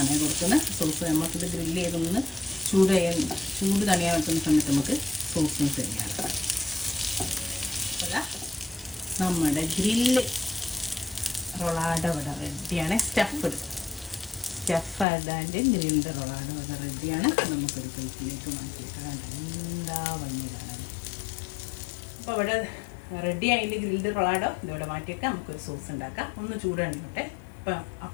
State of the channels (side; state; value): right; drops out; at 15.1 s